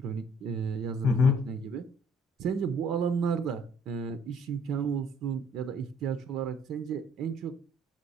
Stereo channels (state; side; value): normal; both; correlation 0.60